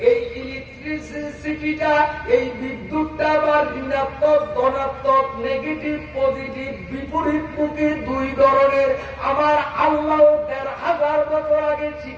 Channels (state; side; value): identical; both; correlation 1.00